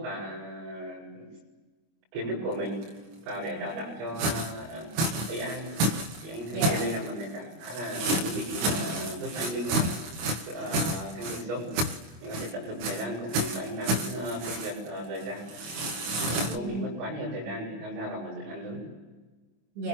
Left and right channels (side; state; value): left; late; 25 ms